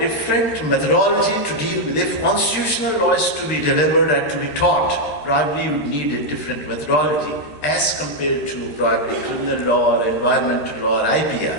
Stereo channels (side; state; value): right; late; 13 ms